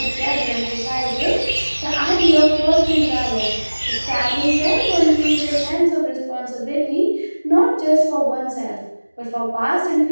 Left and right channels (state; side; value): inverted; both; correlation -1.00